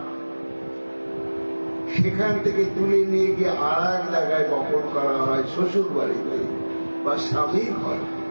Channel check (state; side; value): inverted; both; correlation -1.00